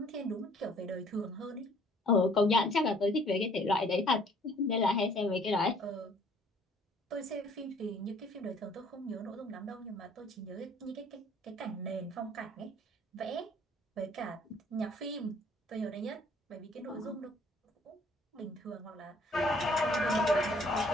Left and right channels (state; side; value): normal; both; correlation 0.58